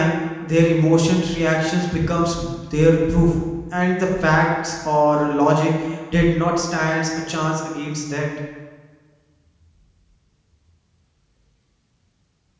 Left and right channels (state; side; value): identical; both; correlation 1.00